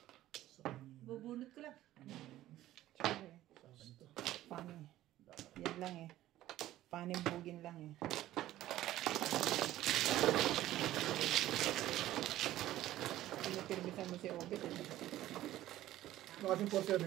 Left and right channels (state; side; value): quieter; left; 14.4 dB